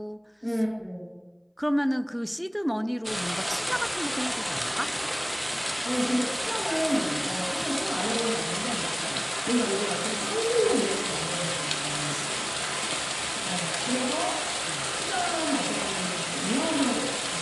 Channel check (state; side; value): identical; both; correlation 1.00